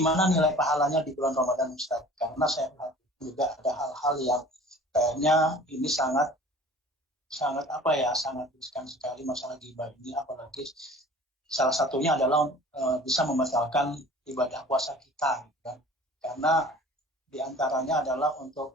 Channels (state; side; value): normal; both; correlation 0.45